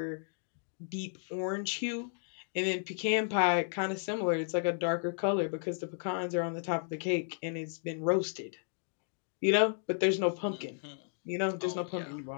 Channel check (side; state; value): right; silent; digital silence